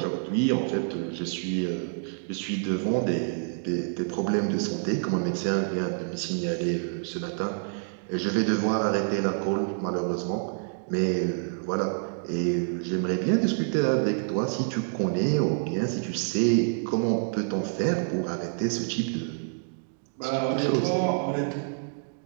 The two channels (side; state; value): left; silent; digital silence